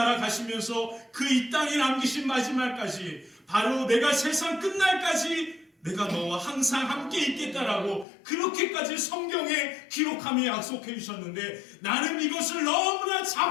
가시면서 그 이 땅에 남기신 마지막까지 바로 내가 세상 끝날까지 내가 너와 항상 함께 있겠다라고 그렇게까지 성경에 기록하며 약속해 주셨는데 나는 이것을 너무나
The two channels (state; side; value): drops out; right; at 8.1 s